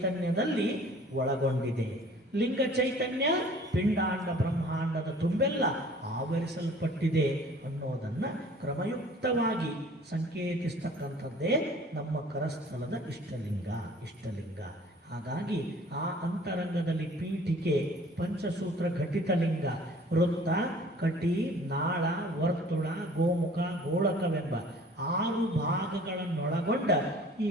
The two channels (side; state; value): both; normal; correlation 0.50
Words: ಒಳಗೊಂಡಿದೆ. ಲಿಂಗ ಚೈತನ್ಯ ಪಿಂಡಾಂಡ ಬ್ರಹ್ಮಾಂಡದ ತುಂಬೆಲ್ಲ ಆವರಿಸಲ್ಪಟ್ಟಿದೆ ಅನ್ನೋದನ್ನು ಕ್ರಮಯುಕ್ತವಾಗಿ ಸಂಕೇತಿಸ್ತಕ್ಕಂಥದ್ದೇ ನಮ್ಮ ಕರಸ್ಥಲದ ಇಷ್ಟಲಿಂಗ. ಇಷ್ಟಲಿಂಗ ಹಾಗಾಗಿ ಆ ಅಂತರಂಗದಲ್ಲಿ ಪೀಠಿಕೆ, ಪಂಚಸೂತ್ರ ಘಟಿತ ಲಿಂಗ, ವೃತ್ತ, ಕಟಿ, ನಾಳ, ವರ್ತುಳ, ಗೋಮುಖ, ಗೋಳಕವೆಂಬ 6 ಭಾಗಗಳನ್ನೊಳಗೊಂಡ ಈ